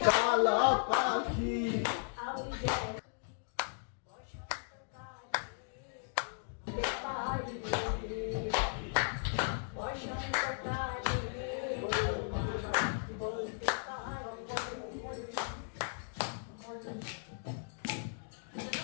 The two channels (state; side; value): silent; right; digital silence